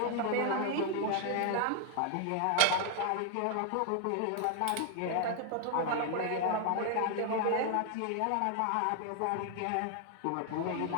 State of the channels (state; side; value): different; both; correlation 0.00